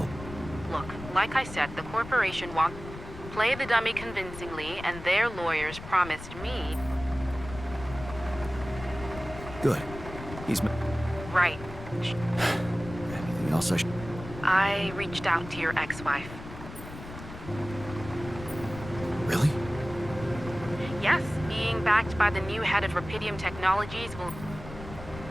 Look, like I said, the corporation wants... Play the dummy convincingly, and their lawyers promised me... Good. He's... Right. Anything else I should... I reached out to your ex-wife. Really? Yes, being backed by the new head of Rapidium Technologies will...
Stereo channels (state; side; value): noise; left; rumble, 12 dB below the sound